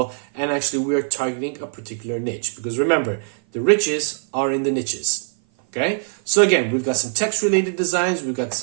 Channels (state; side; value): silent; left; 56 dB below the other